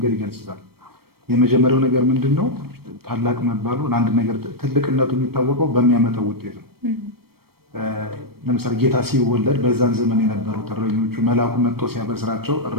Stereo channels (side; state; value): left; late; 0.95 ms